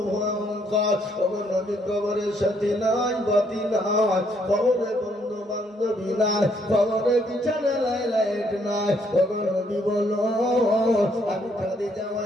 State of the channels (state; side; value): normal; both; correlation 0.70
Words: নবী কবরের সাথে নাই, বাতি নাই, কবরে বন্ধু বান্ধবী নাই, কবরে বিছানা লাইট নাই। নবী বলো, আমি খাদিজা